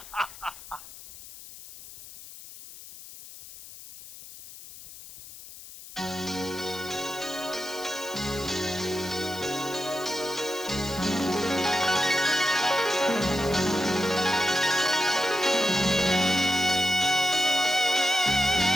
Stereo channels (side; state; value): left; noise; hiss, 16 dB below the sound